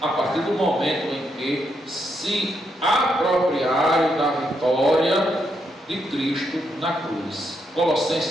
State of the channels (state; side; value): normal; both; correlation 0.79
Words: partir do momento em que se apropriarem da vitória de Cristo na cruz.